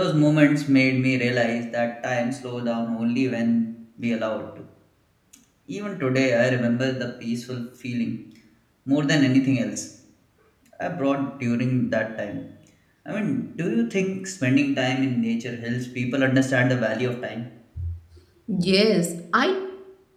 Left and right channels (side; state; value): both; identical; correlation 1.00